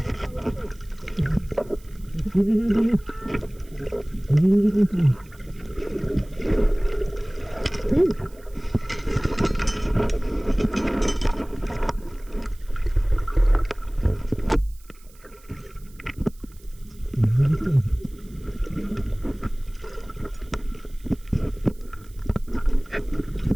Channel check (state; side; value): noise; right; hiss, 27 dB below the sound